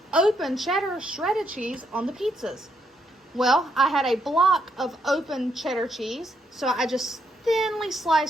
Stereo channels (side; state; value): both; normal; correlation 0.76